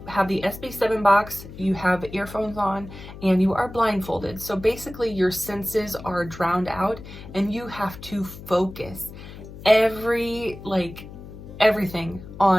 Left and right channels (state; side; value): noise; left; hum, 14 dB below the sound